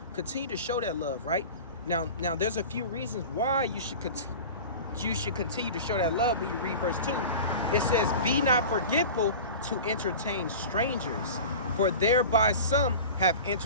Continue to show that love, right? Now, there's a few reasons why you should continue to show that love. When you read verse 2, it says, be not forgetful to entertain strangers, for thereby some have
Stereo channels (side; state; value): both; inverted; correlation -0.35